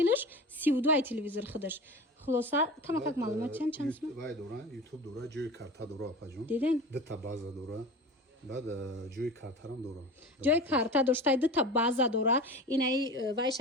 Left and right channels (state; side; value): normal; both; correlation 0.33